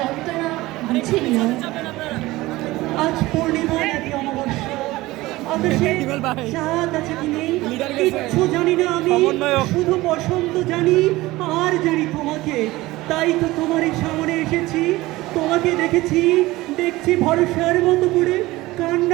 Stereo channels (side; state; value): left; quieter; 19.0 dB